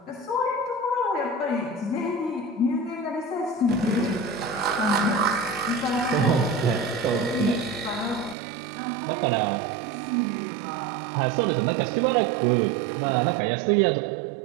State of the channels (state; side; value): drops out; left; at 8.3 s